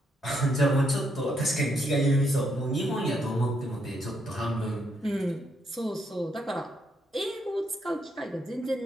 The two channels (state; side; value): normal; both; correlation 0.76